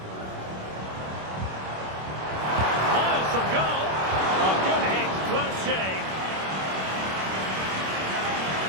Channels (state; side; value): late; left; 26 ms